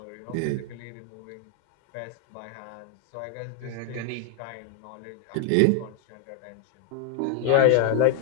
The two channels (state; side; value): different; both; correlation 0.00